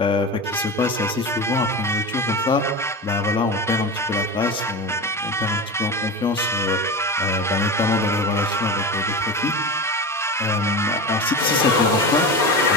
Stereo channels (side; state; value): both; normal; correlation 0.25